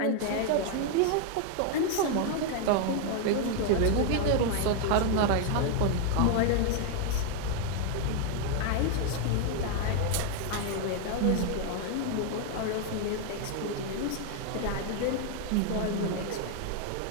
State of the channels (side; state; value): both; different; correlation 0.00